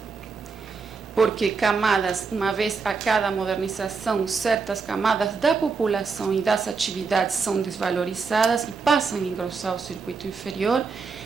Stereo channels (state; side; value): quieter; left; 5.0 dB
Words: porque camadas, uma vez a cada modernização, certas camadas da população e das atividades são desvalorizadas e passam a engrossar o circuito inferior,